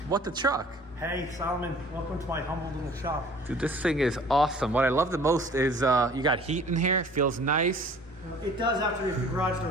what the truck? Hey Solomon, welcome to my humble little shop. Dude, this thing is awesome. What I love the most is you got heat in here. It feels nice. It does after the garage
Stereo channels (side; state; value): both; normal; correlation 0.50